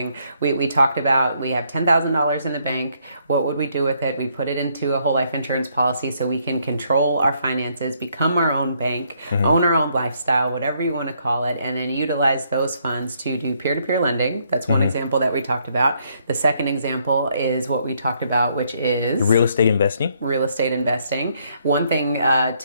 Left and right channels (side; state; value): both; inverted; correlation -0.71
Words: We talked about, we have $10,000 in the bank. What would we do with it? We put it into a whole life insurance policy so we can control our finances, become our own bank, own our own lifestyle, whatever you want to call it, and then utilize those funds to do peer-to-peer lending. That's one example that we talked about. The second example is what we talked about, which is real estate investing. One thing